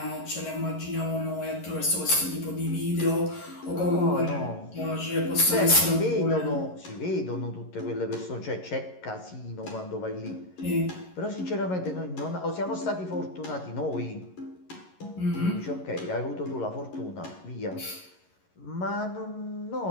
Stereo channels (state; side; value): late; right; 11 ms